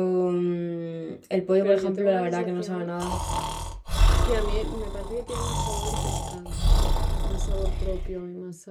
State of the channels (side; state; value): both; identical; correlation 1.00